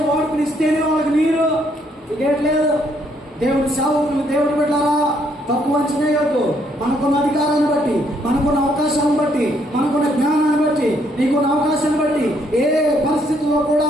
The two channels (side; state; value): both; normal; correlation 0.70